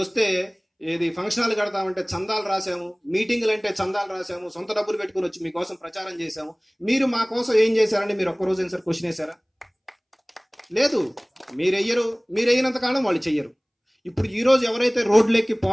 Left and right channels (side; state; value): both; identical; correlation 1.00